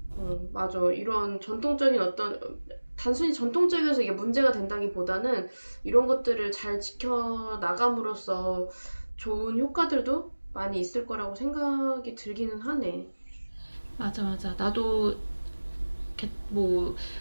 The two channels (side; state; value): both; inverted; correlation -1.00